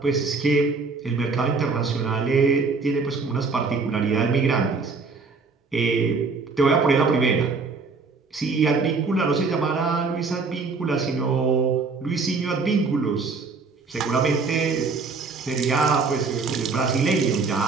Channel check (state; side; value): quieter; left; 4.4 dB